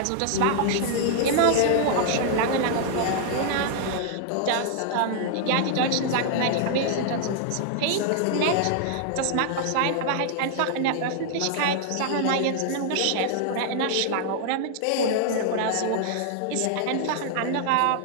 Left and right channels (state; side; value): different; both; correlation -0.01